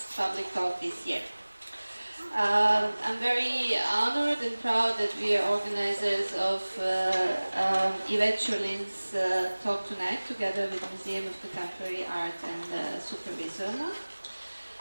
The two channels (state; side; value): inverted; both; correlation -1.00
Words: public talk this year. I'm very honored and proud that we are organizers of Ivet Ćurlin's talk tonight, together with Museum of Contemporary Art and Supervisorna.